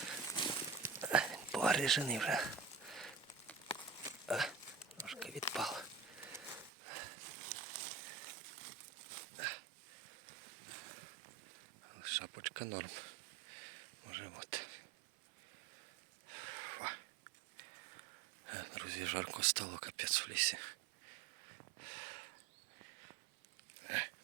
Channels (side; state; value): left; drops out; at 6.7 s